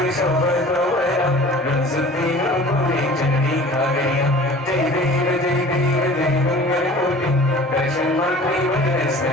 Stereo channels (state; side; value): normal; both; correlation 0.44